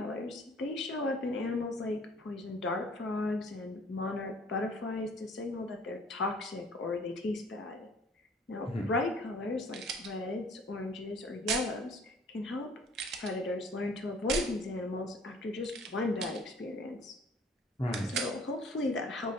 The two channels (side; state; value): both; normal; correlation 0.54